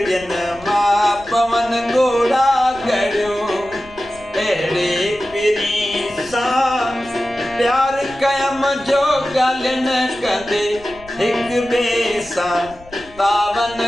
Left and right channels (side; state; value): left; noise; rumble, 22 dB below the sound